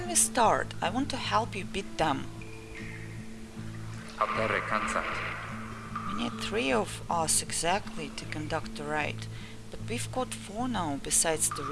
we start? I want to help you beat them. Apere cansat. We need 3 of us exactly to conduct the raid, but we've got 4 now besides the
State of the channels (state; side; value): identical; both; correlation 1.00